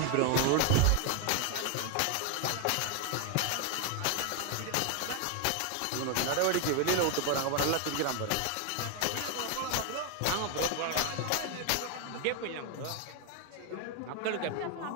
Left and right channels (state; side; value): different; both; correlation 0.01